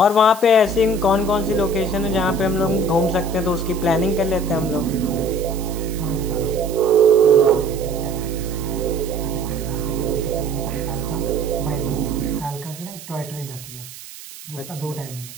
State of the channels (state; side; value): noise; right; hiss, 15 dB below the sound